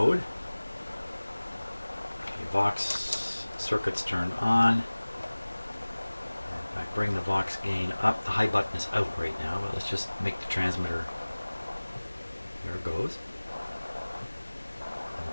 Okay, Vox circuits turned on. If I bring the Vox gain up, the high button is out right now, but let's just make the transmitter. There it goes.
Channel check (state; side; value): inverted; both; correlation -1.00